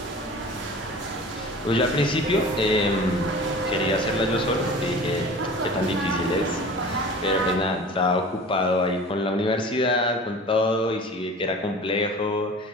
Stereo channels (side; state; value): both; normal; correlation 0.40